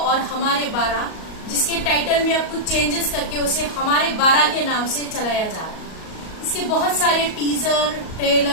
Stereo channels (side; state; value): right; late; 38 ms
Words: और हमारे 12, जिसके टाइटल में अब कुछ चेंजेस करके उसे हमारे 12 के नाम से चलाया जा रहा है। इसके बहुत सारे टीजर,